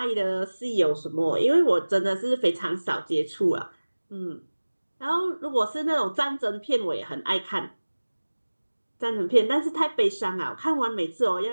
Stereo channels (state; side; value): inverted; both; correlation -1.00